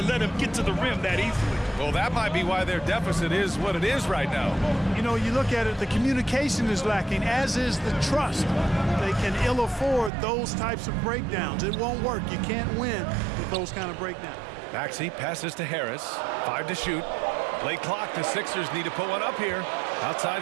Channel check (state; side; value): drops out; left; at 10.1 s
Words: let him get to the rim that easily. Well, that might be why their deficit is what it is right now. You know, you look at it, the communication is lacking, as is the trust. They can ill afford those types of breakdowns. It won't work. You can't win with those kind of breakdowns. Maxey passes to Harris. 5 to shoot. Late clock. The Sixers need to put one up here. Outside